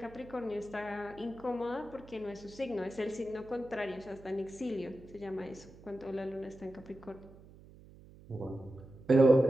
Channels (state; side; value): noise; right; hum, 21 dB below the sound